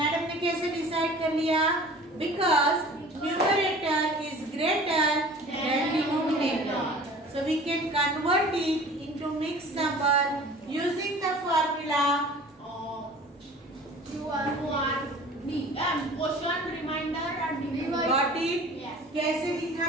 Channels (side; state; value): both; normal; correlation 0.44